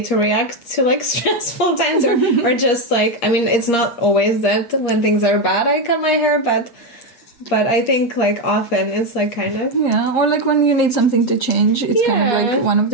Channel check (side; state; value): right; late; 8.5 ms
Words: to react to like stressful times or just like, I mean, it's not always that when things are bad I cut my hair, but I think like often it's like kind of or like when you need something to change, it's kind of like one of